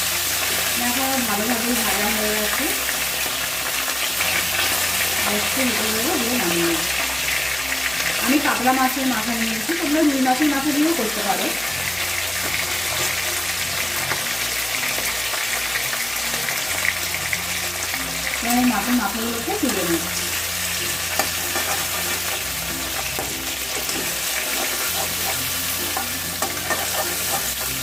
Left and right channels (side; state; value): right; noise; hum, 21 dB below the sound